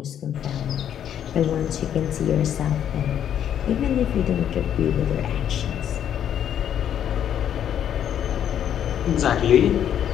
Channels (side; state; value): right; quieter; 9.7 dB